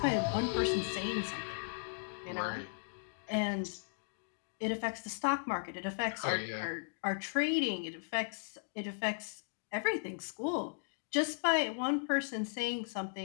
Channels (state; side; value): silent; right; digital silence